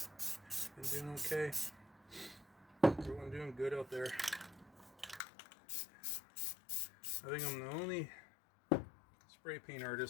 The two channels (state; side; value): drops out; right; at 5.2 s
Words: Been doing okay? Everyone doing good out there? I think I'm the only spray paint